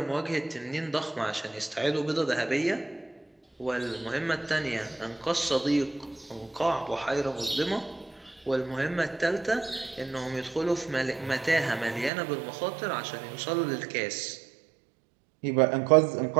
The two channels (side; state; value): left; drops out; at 12.1 s